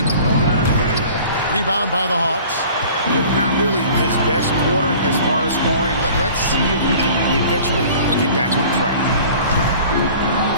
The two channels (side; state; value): both; inverted; correlation -0.46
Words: Rebound by the Hawks. Not really his best quarter as far as scoring. Let's see if he can eventually get back on track.